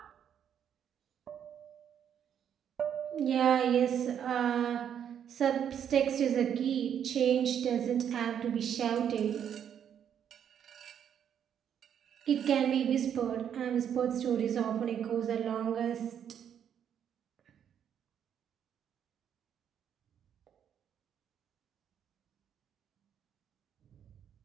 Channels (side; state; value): left; quieter; 8.9 dB